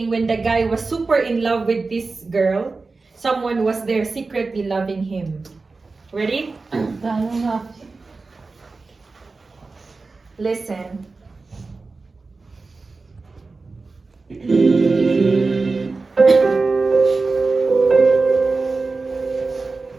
when the guy was super in love with this girl. Someone was there secretly loving him. Ready? Listen.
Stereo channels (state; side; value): quieter; left; 3.9 dB